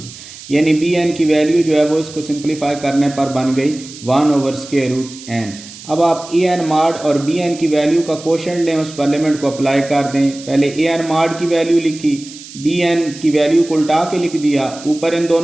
यानी बी एन की वैल्यू जो है वो इसको सिंप्लीफाई करने पर बन गई 1 ओवर स्क्वायर रूट एन। अब आप ए एन मॉड और बी एन की वैल्यू का कोशेंट लें, उस पर लिमिट को अप्लाई कर दें। पहले ए एन मॉड की वैल्यू लिखी, बी एन की वैल्यू को उल्टा के लिख दिया, ऊपर इन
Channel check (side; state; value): right; noise; hiss, 16 dB below the sound